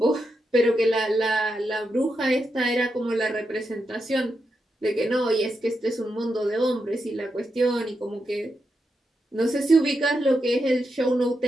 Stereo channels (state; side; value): normal; both; correlation 0.86